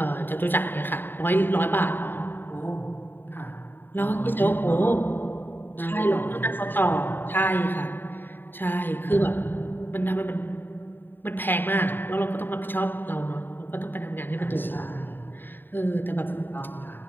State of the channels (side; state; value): right; late; 0.094 ms